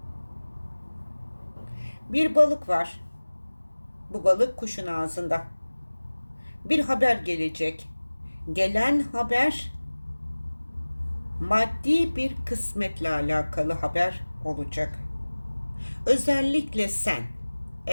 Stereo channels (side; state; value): both; inverted; correlation -1.00